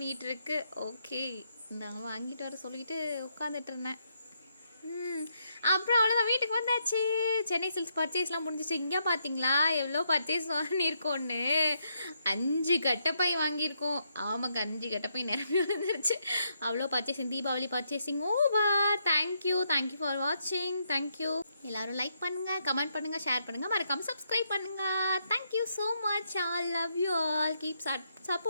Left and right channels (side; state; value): both; inverted; correlation -0.77